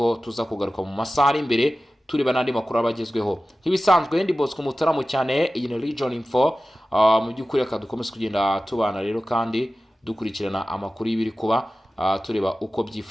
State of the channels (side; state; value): both; normal; correlation 0.95